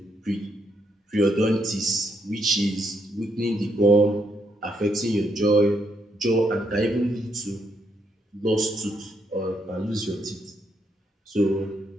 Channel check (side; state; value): both; normal; correlation 0.76